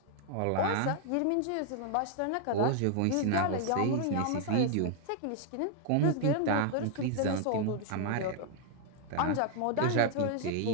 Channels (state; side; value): different; both; correlation 0.00